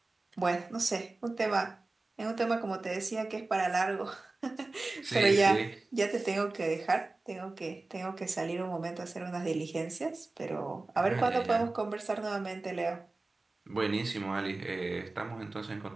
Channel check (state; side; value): quieter; left; 3.3 dB